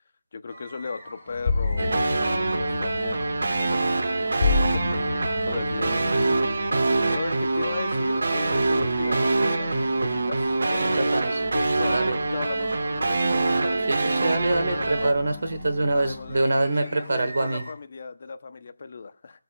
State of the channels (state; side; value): inverted; both; correlation -0.92